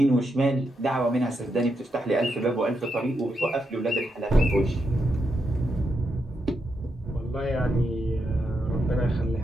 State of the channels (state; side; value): normal; both; correlation 0.83